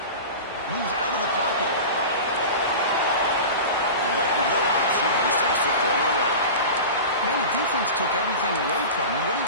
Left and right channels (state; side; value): inverted; both; correlation -0.31